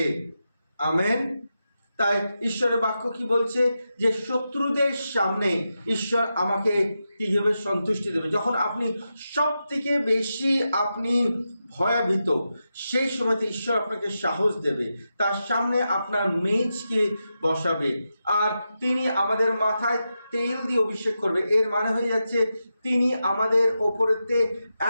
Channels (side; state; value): both; inverted; correlation -0.89